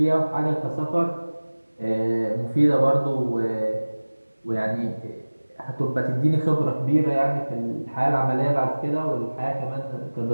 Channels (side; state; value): both; inverted; correlation -1.00